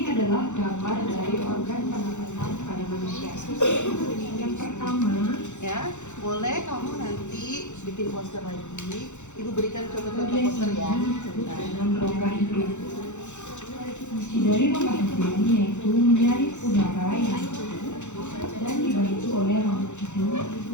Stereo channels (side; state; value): right; late; 0.84 ms